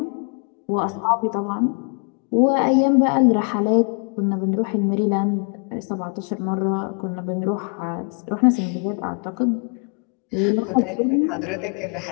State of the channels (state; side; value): quieter; right; 39.4 dB